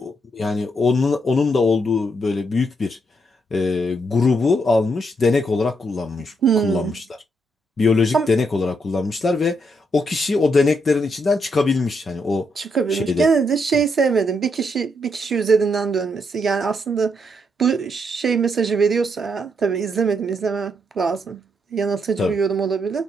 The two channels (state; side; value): normal; both; correlation 0.77